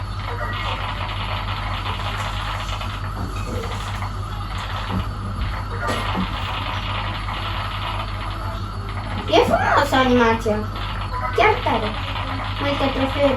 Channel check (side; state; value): both; identical; correlation 1.00